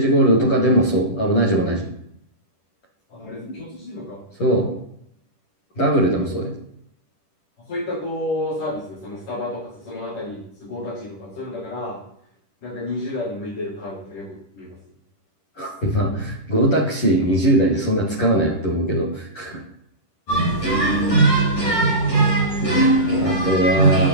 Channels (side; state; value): right; late; 10 ms